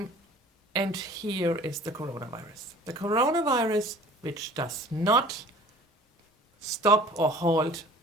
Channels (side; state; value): both; normal; correlation 0.47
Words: And here is the coronavirus. The coronavirus, which does not stop or halt